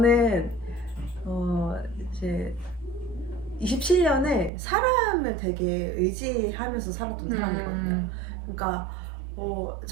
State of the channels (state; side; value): drops out; left; at 4.5 s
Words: 이제 27년을 사람을 되게 의지하면서 살았던 사람이거든요. 그러니까